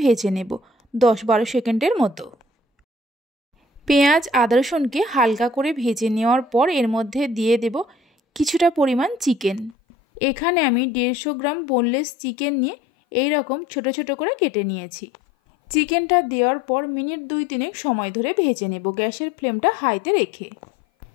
ভেজে নেব 10-12 সেকেন্ডের মতো। পেঁয়াজ আদা রসুনকে হালকা করে ভেজে নেওয়ার পর এর মধ্যে দিয়ে দেব কিছুটা পরিমাণ চিকেন। এখানে আমি 150 গ্রাম বোনলেস চিকেন নিয়ে এই রকম ছোট ছোট করে কেটে নিয়েছি। চিকেনটা দেওয়ার পর মিনিট 2-3 সময় ধরে ভেজে নেব গ্যাসের ফ্লেমটা হাইতে রেখে।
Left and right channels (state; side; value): drops out; right; at 9.8 s